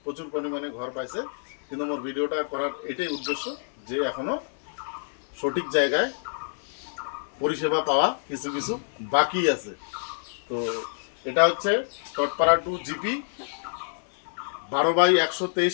প্রচুর পরিমাণে ঘর পাইছে, কিন্তু আমার ভিডিওটা করার এটাই উদ্দেশ্য, যে এখনো সঠিক জায়গায় পরিষেবা পাওয়া কিছু কিছু বাকি আছে। তো এটা হচ্ছে টটপাড়া 2 জিপি 12/123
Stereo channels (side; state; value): right; silent; 58 dB below the other